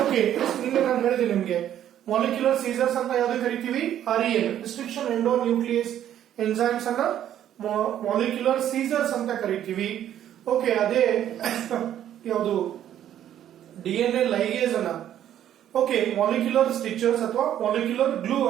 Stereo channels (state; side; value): quieter; left; 11.0 dB